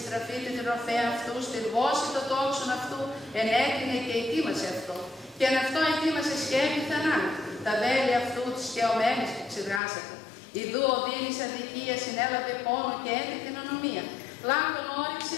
την ροφέα αυτού, στην βόση το τόξον αυτού, ενέκρινε και ετοίμασε αυτό. Και αν αυτό ετοίμασε σκέπη θανάτου, τα βέλη αυτού της σκεωμένης που ξεδράσατε. Ιδού οδύνης αδικία συνέλαβε πόνο και έντε την ανομία. Λάκων όριξε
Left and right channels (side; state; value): right; drops out; at 9.8 s